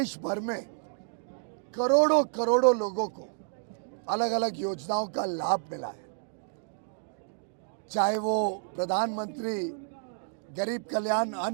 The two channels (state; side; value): silent; left; digital silence